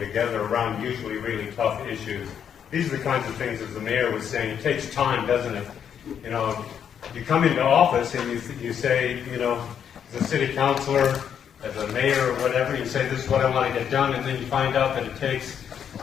around usually really tough issues. These are the kinds of things, as the mayor was saying, it takes time, doesn't it? You know, you come into office and you say, you know, as a city councilor, as a mayor or whatever, you say, this is what I want to get done, and then you find out that it takes,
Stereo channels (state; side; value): quieter; right; 8.4 dB